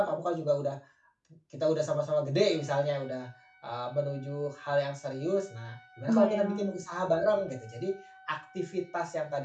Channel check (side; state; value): both; identical; correlation 1.00